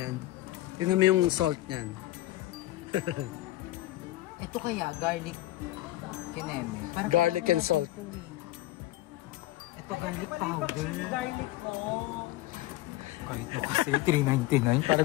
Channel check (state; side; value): quieter; right; 16.6 dB